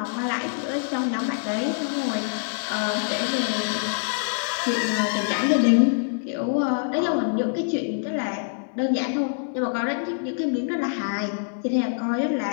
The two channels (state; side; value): silent; right; digital silence